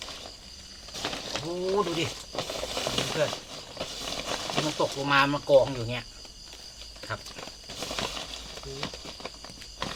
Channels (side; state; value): both; identical; correlation 1.00